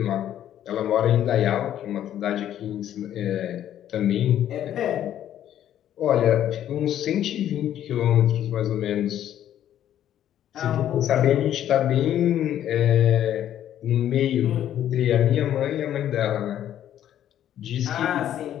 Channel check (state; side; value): quieter; right; 11.1 dB